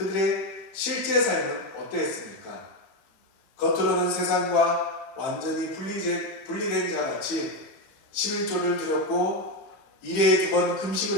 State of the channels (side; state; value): right; late; 15 ms